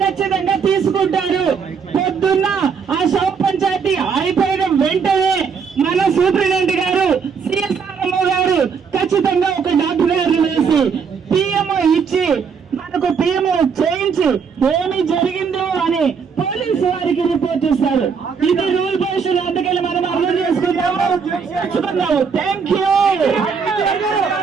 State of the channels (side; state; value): left; quieter; 6.0 dB